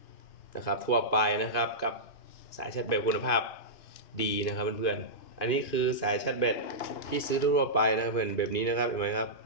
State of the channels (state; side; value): late; right; 2.4 ms